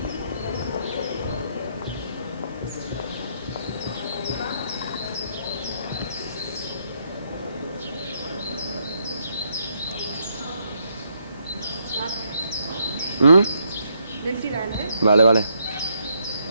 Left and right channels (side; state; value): both; inverted; correlation -0.75